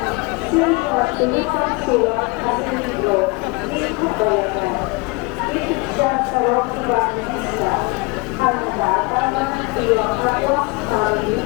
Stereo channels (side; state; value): right; quieter; 26.5 dB